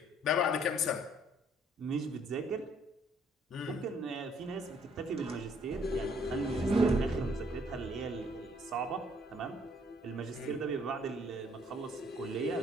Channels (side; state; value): both; normal; correlation 0.63